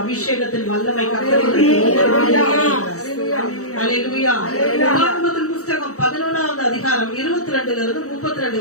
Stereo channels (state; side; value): late; right; 0.65 ms